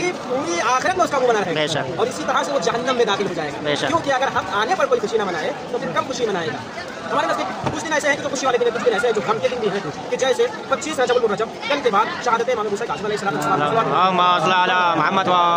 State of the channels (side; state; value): both; identical; correlation 1.00